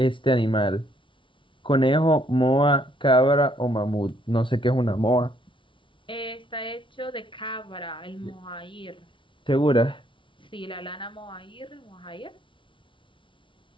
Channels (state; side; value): late; right; 0.25 ms